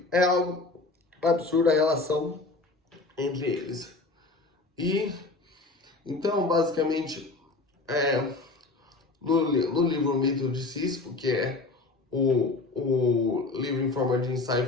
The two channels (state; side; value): quieter; right; 3.5 dB